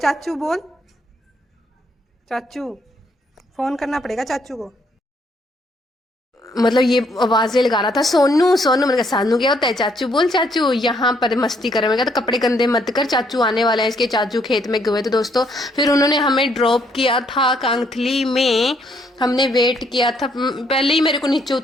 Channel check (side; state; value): both; normal; correlation 0.70